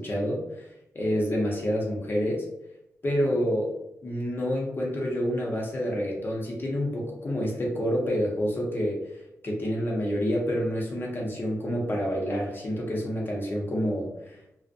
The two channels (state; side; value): normal; both; correlation 0.87